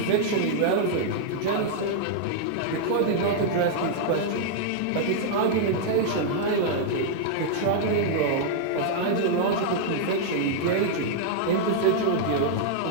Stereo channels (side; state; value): both; different; correlation -0.01